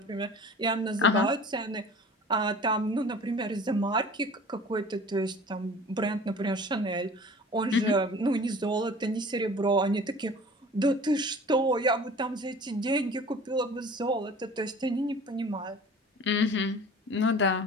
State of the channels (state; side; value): normal; both; correlation 0.43